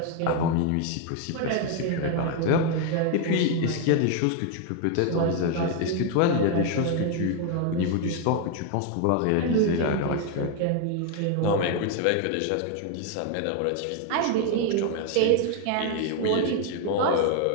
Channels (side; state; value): both; different; correlation 0.01